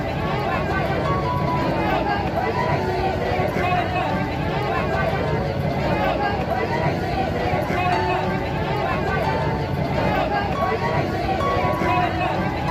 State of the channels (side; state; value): both; identical; correlation 1.00